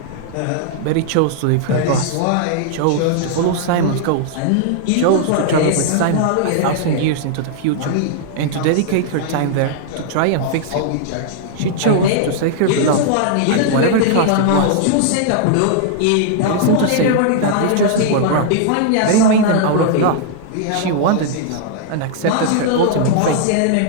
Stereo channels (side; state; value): both; different; correlation -0.01